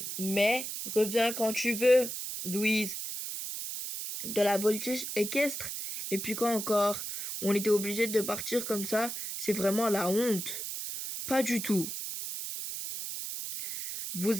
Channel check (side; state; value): right; noise; hiss, 5 dB below the sound